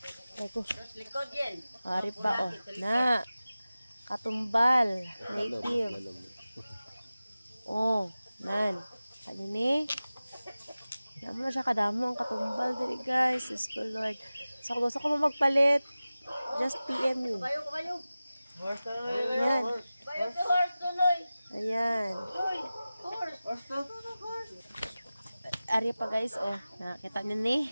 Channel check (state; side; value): inverted; both; correlation -0.96